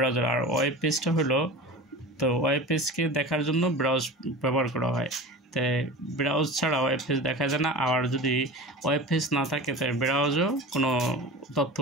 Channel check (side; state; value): both; normal; correlation 0.33